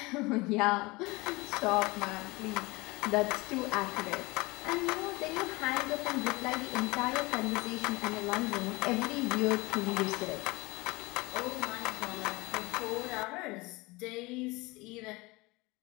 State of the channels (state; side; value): quieter; right; 23.5 dB